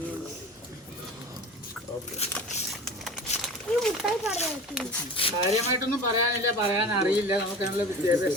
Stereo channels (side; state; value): both; normal; correlation 0.36